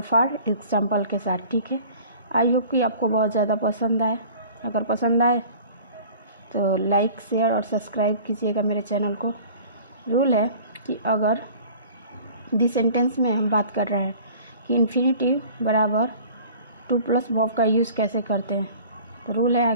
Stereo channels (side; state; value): both; inverted; correlation -0.45